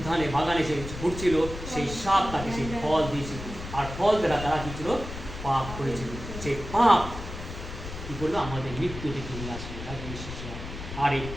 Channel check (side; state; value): left; noise; rumble, 9 dB below the sound